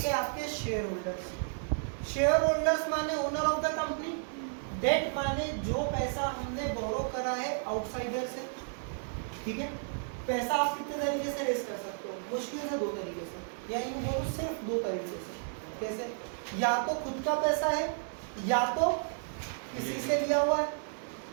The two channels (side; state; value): left; silent; digital silence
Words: है आपके शेयर होल्डर्स। शेयर होल्डर्स माने owner of the company, debt माने जो पैसा हमने बोरो करा है आउटसाइडर से। ठीक है, पैसा आप कितने तरीके से रेस कर सकते हो, मुश्किल से 2 तरीके से, या यूं बोलो सिर्फ 2 तरीके से। कैसे, या तो खुद का पैसा है, या तो किसी से लिया हुआ है।